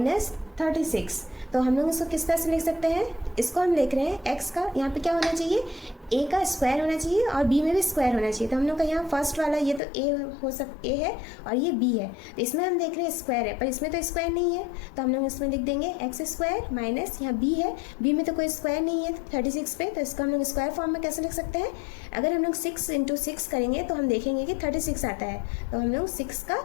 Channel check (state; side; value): drops out; right; at 9.8 s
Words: 36, तो हम लोग इसको किस तरह से लिख सकते हैं? इसको हम लिख रहे हैं एक्स का यहाँ पे क्या होना चाहिए? ए का स्क्वायर होना चाहिए और बी में भी स्क्वायर होना चाहिए। तो हम लोग का यहाँ फर्स्ट वाला ये तो ए है और ये बी है, तो इसमें हम देख रहे हैं स्क्वायर है, पर इसमें तो स्क्वायर नहीं है, तो हम लोग इसमें लिख देंगे एक्स स्क्वायर माइनस यहाँ बी है, बी में तो कोई स्क्वायर नहीं है 36 पे, तो इसको हम लोग स्क्वायर फॉर्म में कैसे लिख सकते हैं? अगर हम लोग 6 × 6 करेंगे तो हम देखेंगे कि 36 आता है, तो हम लोग 6 का